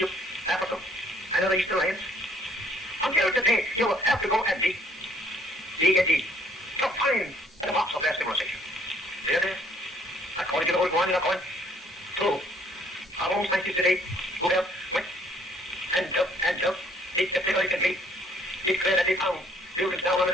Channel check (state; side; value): normal; both; correlation 0.63